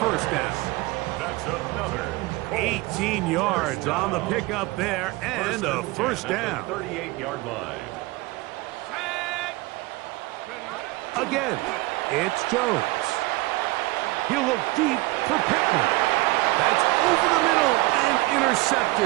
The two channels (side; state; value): left; quieter; 21.6 dB